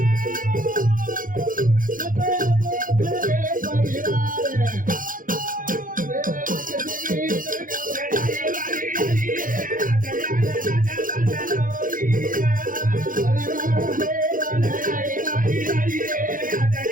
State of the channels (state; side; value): late; left; 0.39 ms